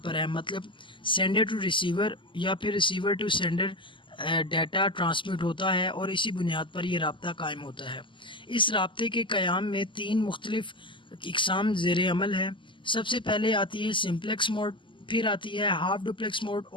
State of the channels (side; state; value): right; late; 0.24 ms